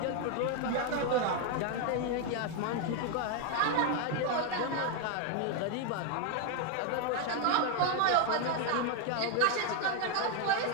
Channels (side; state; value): both; different; correlation 0.01